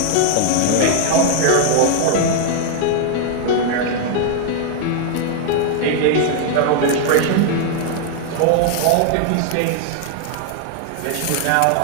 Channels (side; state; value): both; different; correlation 0.00